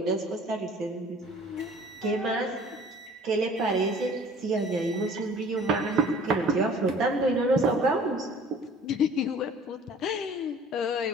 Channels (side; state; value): both; normal; correlation 0.49